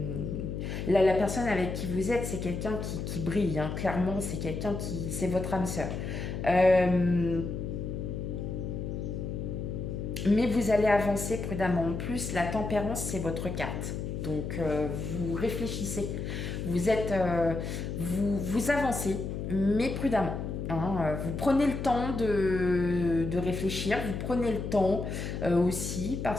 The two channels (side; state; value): left; noise; hum, 4 dB below the sound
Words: la personne avec qui vous êtes, c'est quelqu'un qui brille. Hein. Clairement, c'est quelqu'un qui... C'est votre âme sœur. Mais vous allez avancer prudemment. En plus, la tempérance, c'est votre carte. Donc, vous réfléchissez. Vous avancez, mais prudemment. Hein, vous prenez le temps de réfléchir, vous prenez le temps aussi